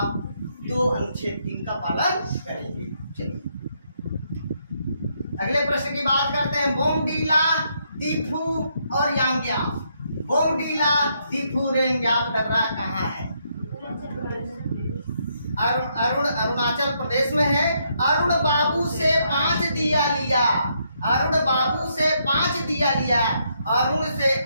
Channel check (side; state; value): both; inverted; correlation -0.75